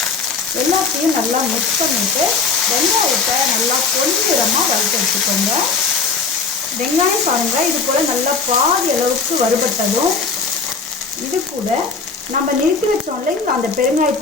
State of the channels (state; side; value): quieter; right; 4.6 dB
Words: எல்லாத்தையும் நல்லா மிக்ஸ் பண்ணிவிட்டு வெங்காயத்தை நல்லா பொன்னிறமாக வறுத்து எடுத்துக்கோங்க. வெங்காயம் பாருங்கள் இது போல் நல்லா பாதி அளவுக்கு வறுபட்டதும் இது கூட நம்ம நிறுத்தி வச்சோம் இல்லைங்க அந்த